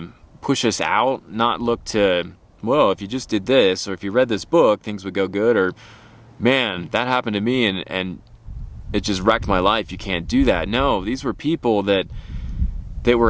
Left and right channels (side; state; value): both; identical; correlation 1.00